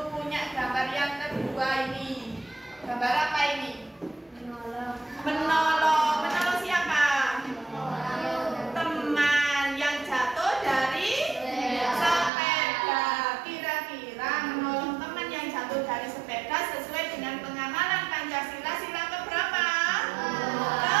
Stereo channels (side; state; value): left; drops out; at 12.3 s